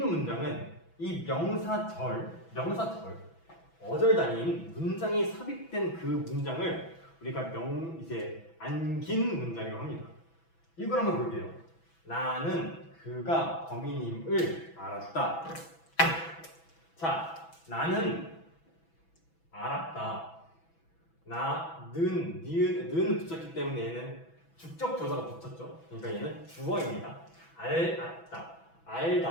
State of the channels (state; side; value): late; right; 6.1 ms